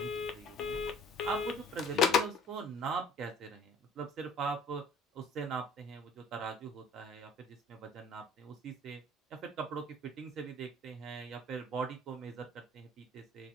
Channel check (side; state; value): both; normal; correlation 0.51